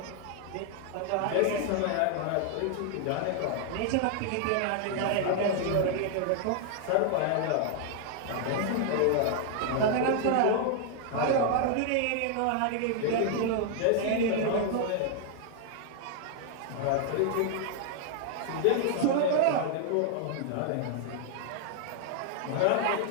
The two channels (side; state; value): both; different; correlation 0.00